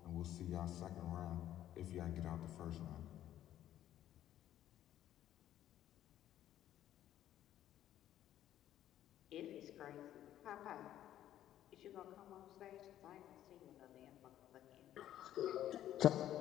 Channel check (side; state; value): right; quieter; 12.1 dB